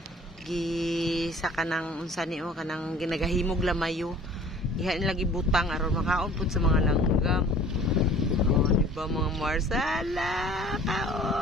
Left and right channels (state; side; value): normal; both; correlation 0.49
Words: Gi sa kanang unsa ni o kanang ginagahimog lamayo. Ihain lagi butang aron makaon pud sa mga langgam. Oh, di ba mga Mars? Ala,